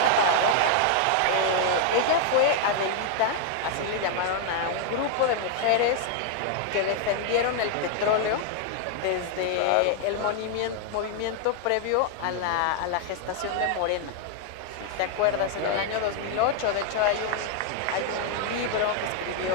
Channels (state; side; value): different; both; correlation 0.00